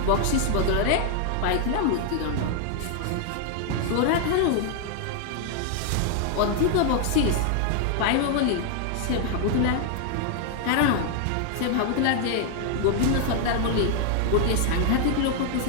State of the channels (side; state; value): both; different; correlation 0.00